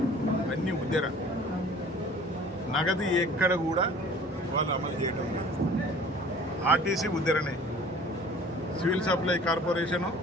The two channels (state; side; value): normal; both; correlation 0.48